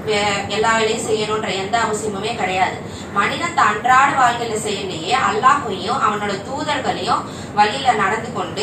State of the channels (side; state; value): both; identical; correlation 1.00